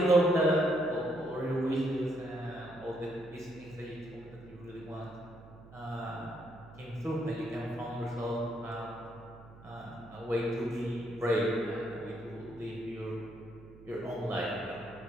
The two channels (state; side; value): noise; right; hum, 19 dB below the sound